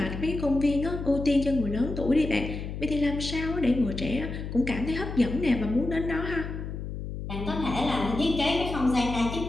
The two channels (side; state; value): left; noise; hum, 7 dB below the sound